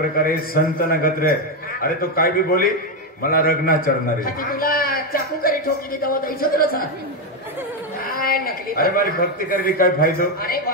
संत नगत रे अरे तो काय बी बोली मला रगना चढणार आहे ती तुला चाकू करी ठोकी दी तेव्हा द्यायचं तुला काय नकली अरे मारी भक्ती करवी काय फायदो अरे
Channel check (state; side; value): normal; both; correlation 0.07